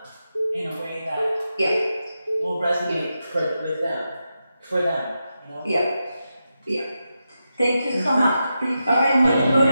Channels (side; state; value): both; inverted; correlation -0.88